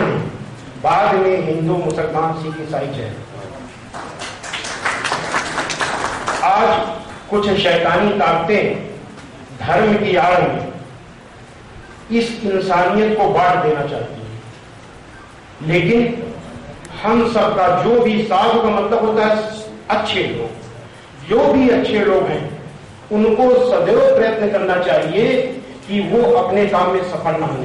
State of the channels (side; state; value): both; identical; correlation 1.00